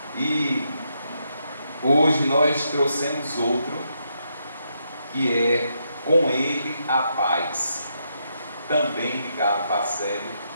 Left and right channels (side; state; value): both; inverted; correlation -0.79